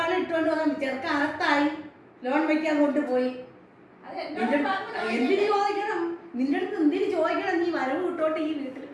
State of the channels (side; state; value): both; identical; correlation 1.00